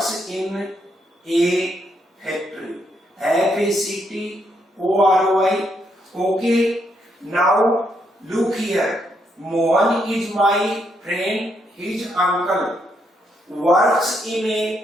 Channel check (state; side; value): normal; both; correlation 0.77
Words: in a factory. Factory. Okay, now look here. Mohan is my friend. His uncle works in